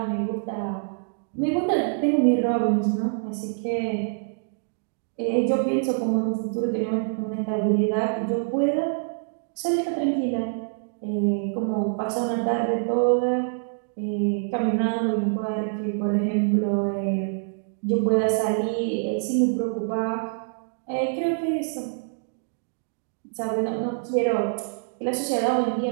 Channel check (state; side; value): silent; left; digital silence